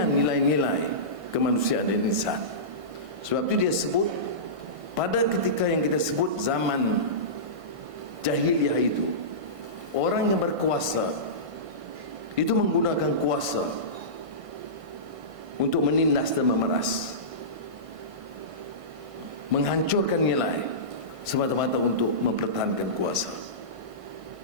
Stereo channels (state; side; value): late; left; 1.5 ms